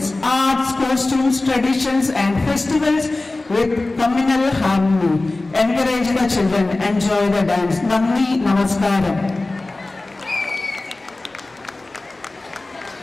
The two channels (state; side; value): quieter; right; 3.0 dB